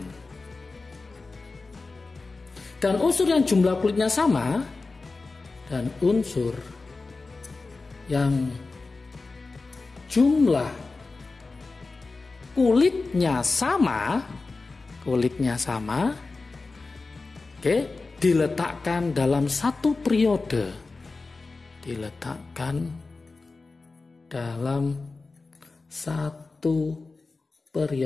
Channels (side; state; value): right; quieter; 3.8 dB